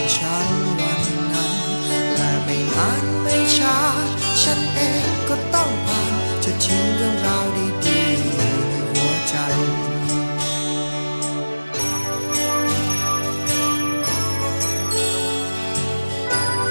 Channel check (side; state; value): both; inverted; correlation -1.00